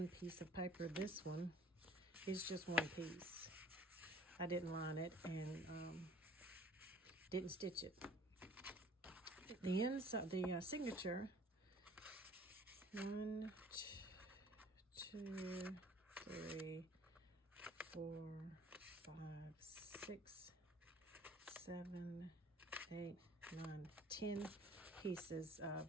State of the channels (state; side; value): normal; both; correlation 0.52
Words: piece of paper. This one is just one piece. I didn't line it and didn't stitch it. The inside, the signature, 1, 2, 3, 4, 5, 6, 7, 8, 9, 10 pieces of.